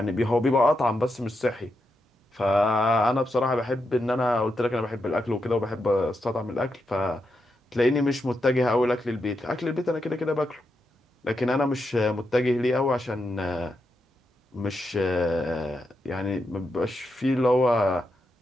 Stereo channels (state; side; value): normal; both; correlation 0.85